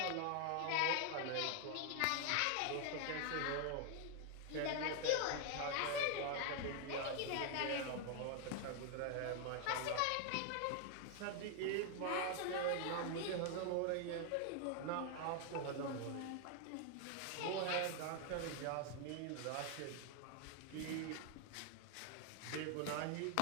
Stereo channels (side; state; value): both; different; correlation 0.00